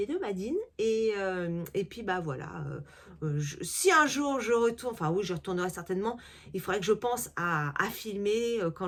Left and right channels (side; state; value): both; identical; correlation 1.00